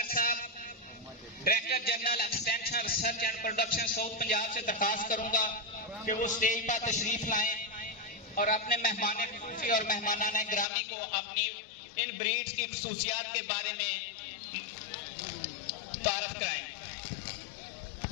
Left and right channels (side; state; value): right; drops out; at 10.7 s